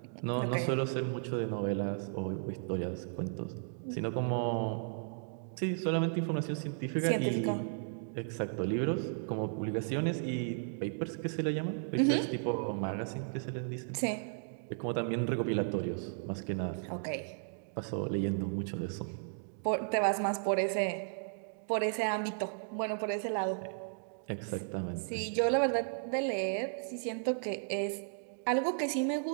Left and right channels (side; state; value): left; silent; digital silence